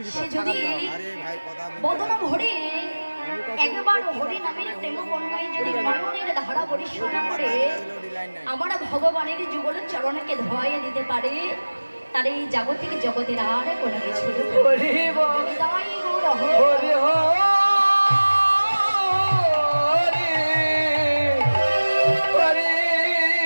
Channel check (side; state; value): both; inverted; correlation -1.00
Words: সে যদি বদন ভরে একবার হরি নামের প্রেম বন্যায় যদি নয়নের ধারা পরিশোনা করে আমার ভগবানের যুগল চরণকে ধোয়াইয়া দিতে পারে, তার এই জাগতিক জগতের আর কোনো কিছু নেই। হৃদয় গৌর হরি।